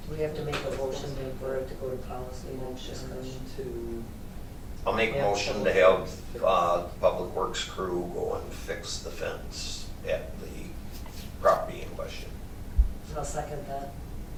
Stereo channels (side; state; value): both; identical; correlation 1.00